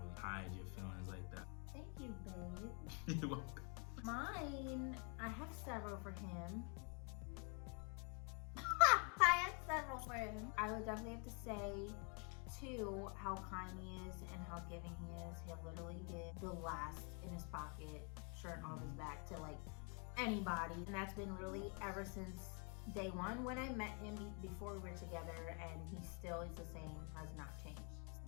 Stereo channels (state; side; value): quieter; right; 36.4 dB